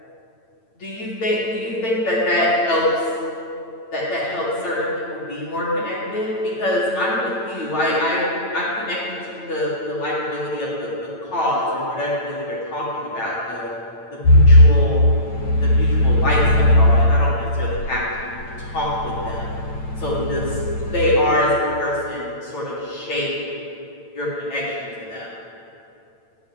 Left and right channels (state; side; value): late; right; 8.9 ms